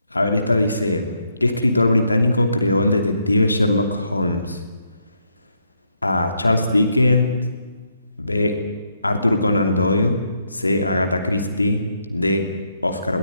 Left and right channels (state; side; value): inverted; both; correlation -0.76